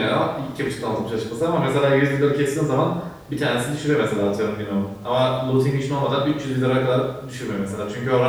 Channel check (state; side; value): identical; both; correlation 1.00